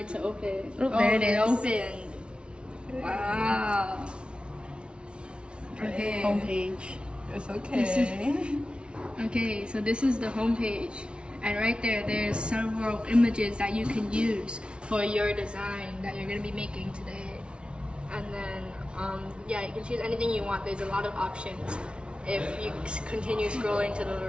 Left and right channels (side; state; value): left; late; 0.057 ms